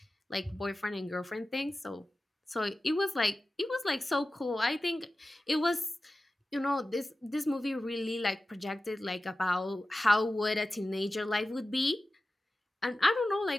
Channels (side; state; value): both; normal; correlation 0.95